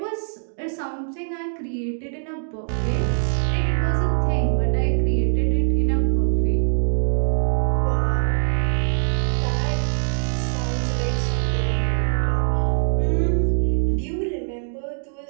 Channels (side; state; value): left; silent; digital silence